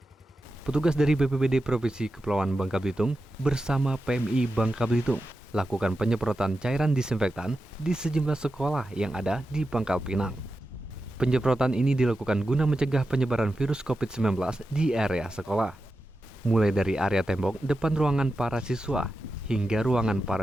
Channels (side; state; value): both; normal; correlation 0.91